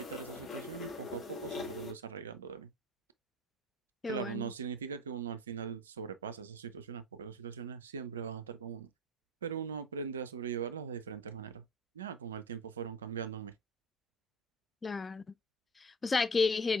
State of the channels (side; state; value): both; normal; correlation 0.36